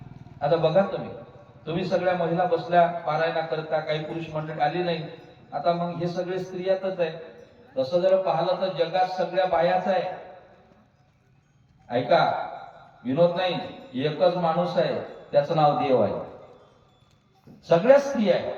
आता बघा, तुम्ही सगळ्या महिला बसल्या पारायणाकरता, काही पुरुष मंडळी आली नाही. आता मग हे सगळे स्त्रियातच आहे. तसं जर पाहिलं तर जगात सगळ्या बायाच आहे. ऐका, विनोद नाही, एकच माणूस आहे, त्याचं नाव देव आहे. सगळ्या स्त्रिया आहे.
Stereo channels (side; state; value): both; identical; correlation 1.00